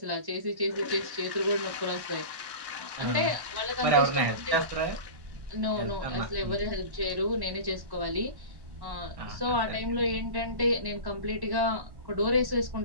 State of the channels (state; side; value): late; left; 1.1 ms